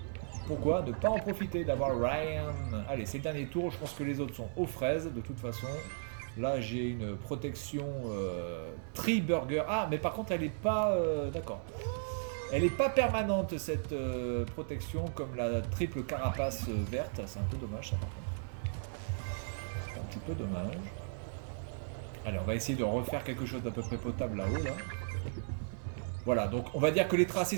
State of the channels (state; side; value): silent; left; digital silence